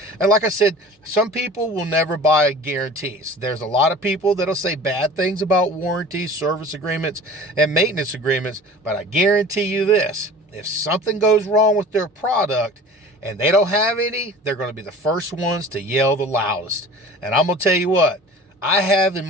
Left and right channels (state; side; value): normal; both; correlation 0.42